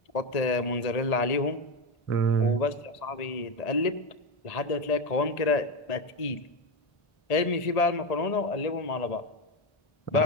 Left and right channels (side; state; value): right; late; 1.8 ms